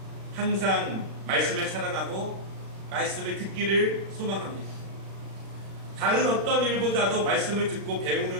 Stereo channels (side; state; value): left; late; 36 ms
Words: 항상 말씀을 사랑하고 말씀을 듣기를 소망합니다. 다른 어떤 일보다도 말씀을 듣고